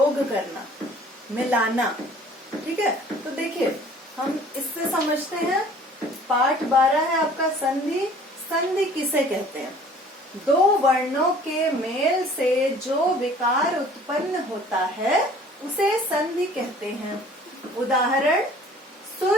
करना, मिलाना। ठीक है, तो देखिए हम इससे समझते हैं। पाठ 12 है आपका संधि। संधि किसे कहते हैं? दो वर्णों के मेल से जो विकार उत्पन्न होता है उसे संधि कहते हैं। उदाहरण,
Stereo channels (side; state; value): both; normal; correlation 0.51